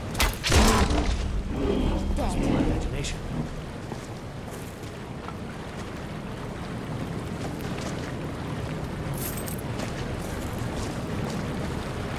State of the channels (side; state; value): both; identical; correlation 1.00